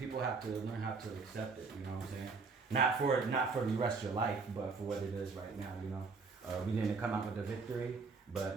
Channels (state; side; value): quieter; left; 4.5 dB